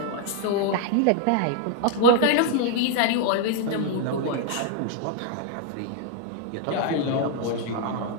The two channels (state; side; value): different; both; correlation 0.00